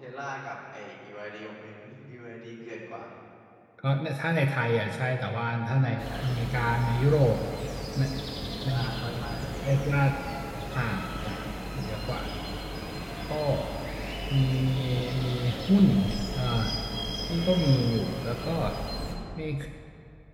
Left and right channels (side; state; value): both; identical; correlation 1.00